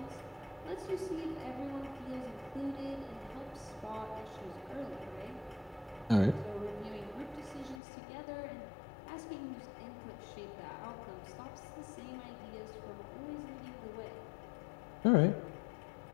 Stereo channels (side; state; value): right; drops out; at 7.8 s